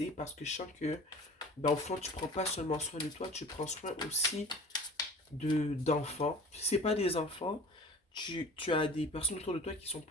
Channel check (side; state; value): both; normal; correlation 0.42